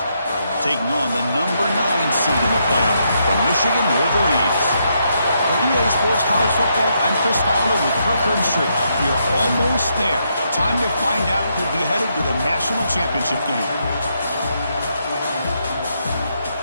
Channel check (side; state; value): both; inverted; correlation -0.78